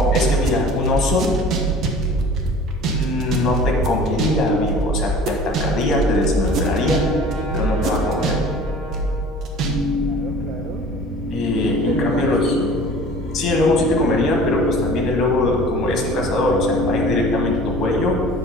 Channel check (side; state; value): both; normal; correlation 0.45